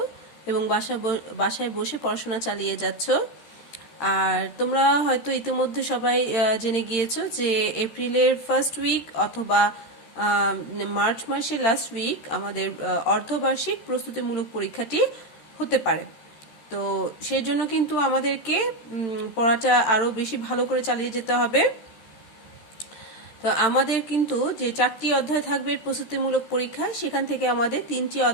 এবং বাসায় বসে পড়াশোনা চালিয়ে যাচ্ছ। আর তোমরা হয়তো ইতিমধ্যে সবাই জেনে গিয়েছো যে এপ্রিলের ফার্স্ট উইক অথবা মার্চ মাসের লাস্ট উইক আমাদের অর্ধবার্ষিক প্রস্তুতিমূলক পরীক্ষাটি হতে পারে। তো সেই জন্য কিন্তু আমাদেরকে পড়াটা আরও বেশি ভালো করে চালিয়ে যেতে হবে। তো আমাদের কিন্তু যে 4টি অধ্যায় থাকবে প্রস্তুতিমূলক পরীক্ষা, সেখান থেকে আমাদের 3টি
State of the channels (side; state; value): right; late; 13 ms